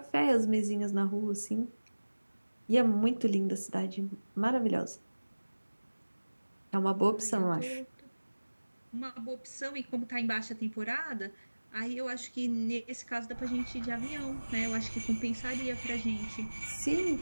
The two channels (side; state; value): both; inverted; correlation -1.00